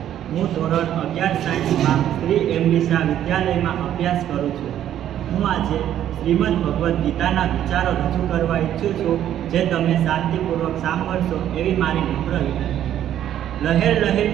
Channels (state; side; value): quieter; left; 11.1 dB